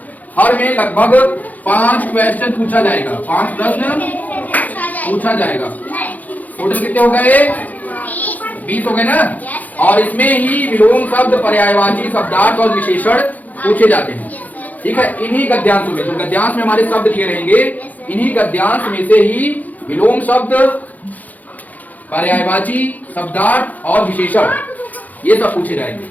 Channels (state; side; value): late; right; 0.080 ms